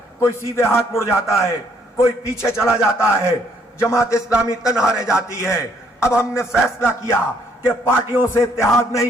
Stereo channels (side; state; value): both; normal; correlation 0.67